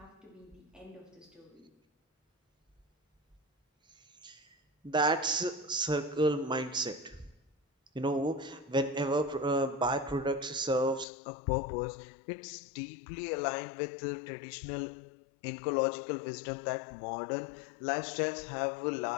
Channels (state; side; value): drops out; right; at 11.1 s